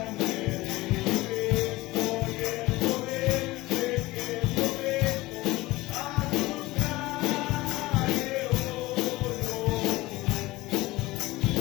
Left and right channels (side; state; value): right; quieter; 19.6 dB